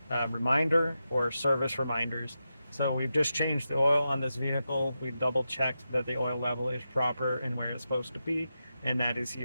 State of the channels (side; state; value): both; inverted; correlation -0.89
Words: reminder or service reminders. So we've just changed the oil on this vehicle. We've double checked that the oil level is proper and where it's supposed to be, and that is